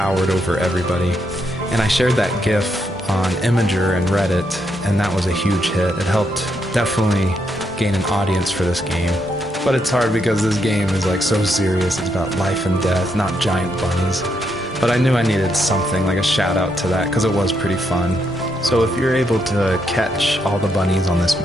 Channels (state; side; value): normal; both; correlation 0.79